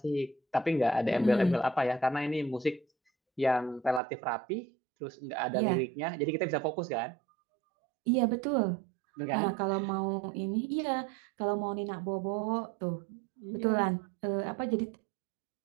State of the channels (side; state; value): left; drops out; at 4.0 s